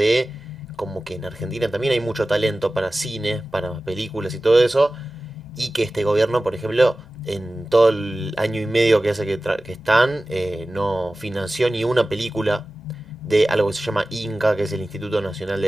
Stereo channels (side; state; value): both; normal; correlation 0.96